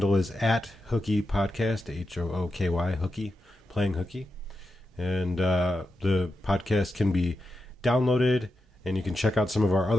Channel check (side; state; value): both; normal; correlation 0.88